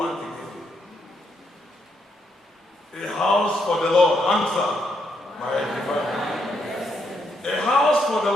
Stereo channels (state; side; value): normal; both; correlation 0.77